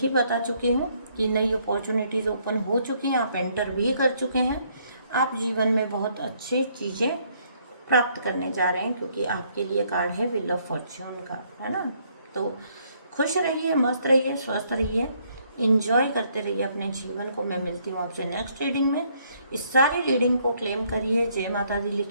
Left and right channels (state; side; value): inverted; both; correlation -0.68